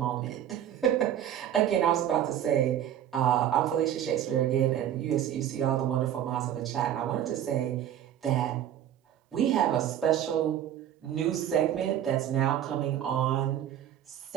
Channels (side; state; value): left; quieter; 10.7 dB